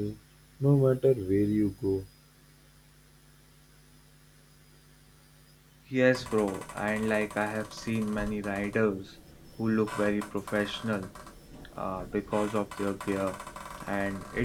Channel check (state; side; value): identical; both; correlation 1.00